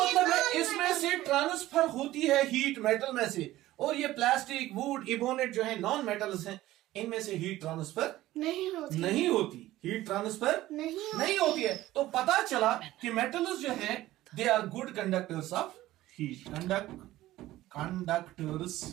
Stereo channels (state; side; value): quieter; left; 15.8 dB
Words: है non-metal इसमें से ट्रांसफर होती है हीट मेटल में से, और ये प्लास्टिक, वुड, इबोनेट जो है नॉन मेटल्स हैं, इनमें से हीट ट्रांसफर नहीं होती हीट ट्रांसफर नहीं होती है। तो पता चला कि मेटल्स जो है they are good conductors of heat, conductors